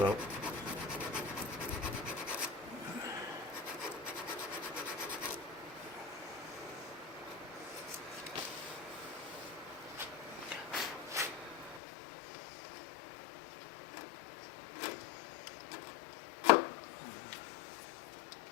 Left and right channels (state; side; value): drops out; right; at 11.8 s